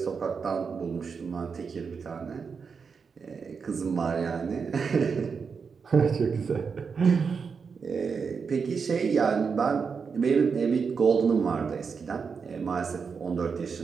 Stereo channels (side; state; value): left; quieter; 5.7 dB